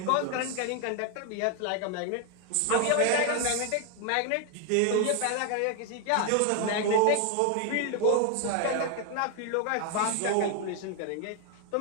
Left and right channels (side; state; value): both; different; correlation 0.01